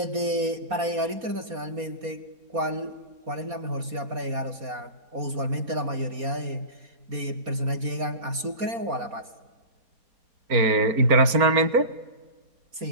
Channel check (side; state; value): left; late; 4.2 ms